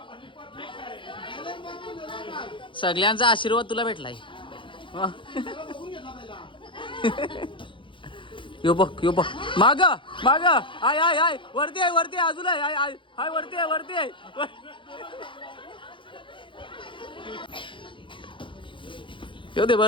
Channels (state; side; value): late; right; 0.24 ms